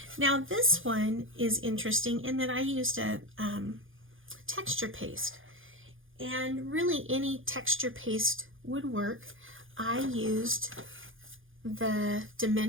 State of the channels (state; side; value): late; left; 0.58 ms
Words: Now this one is interesting in that I used a texture paste, and really any texture paste would work. I used the